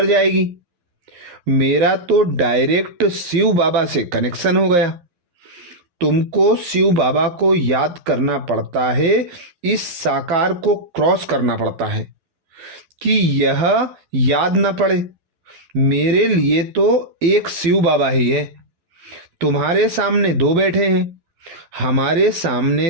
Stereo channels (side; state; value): left; late; 11 ms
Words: जाएगी? मेरा तो डायरेक्ट शिव बाबा से कनेक्शन हो गया। तुमको शिव बाबा को याद करना पड़ता है, इस साकार को क्रॉस करना पड़ता है कि यह याद न पड़े। मेरे लिए तो एक शिव बाबा ही है। तुम्हारे सामने 2 बैठे हैं, हमारे